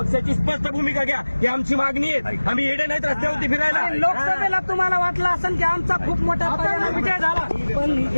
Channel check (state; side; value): inverted; both; correlation -1.00